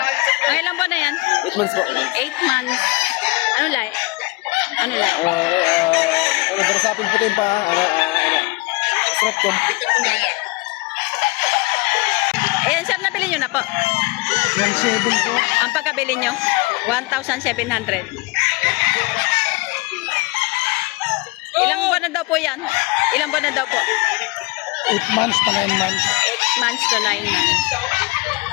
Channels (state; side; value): quieter; right; 24.7 dB